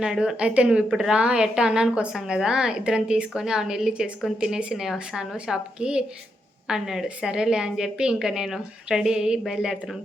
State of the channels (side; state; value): both; normal; correlation 0.82